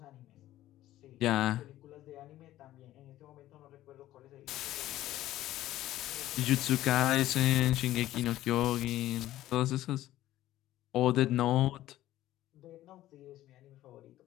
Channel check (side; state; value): right; quieter; 14.5 dB